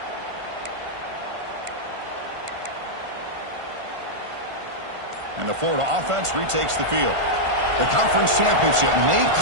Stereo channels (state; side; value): late; left; 1.5 ms